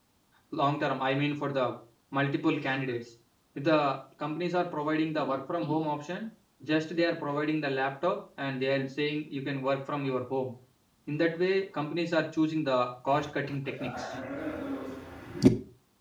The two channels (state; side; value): identical; both; correlation 1.00